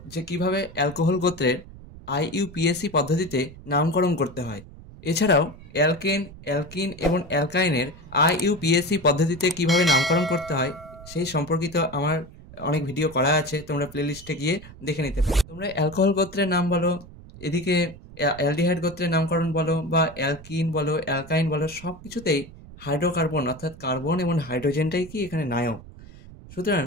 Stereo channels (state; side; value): noise; right; rumble, 18 dB below the sound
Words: যে কিভাবে অ্যালকোহল গোত্রের IUPAC পদ্ধতিতে নামকরণ করতে হয়। এছাড়াও অ্যালকেন, অ্যালকিন এবং অ্যালকাইনের IUPAC পদ্ধতিতে কিভাবে নামকরণ করতে হয় সেই সম্পর্কিত আমার অনেক ভিডিও করা আছে, তোমরা প্লেলিস্টে গিয়ে দেখে নিতে পারো। তোমরা অ্যালকোহল গোত্রের নাম বলো, এদিকে অ্যালডিহাইড গোত্রের নামকরণ বলো, বা অ্যালকিন বলো, অ্যালকাইন বলো, সব কিছুতেই হাইড্রোকার্বন অর্থাৎ কার্বন এবং হাইড্রোজেনটাই কি এখানে নায়ক। সুতরাং